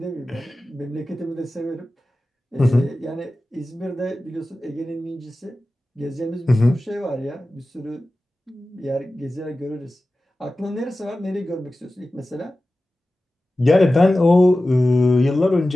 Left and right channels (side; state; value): both; normal; correlation 0.95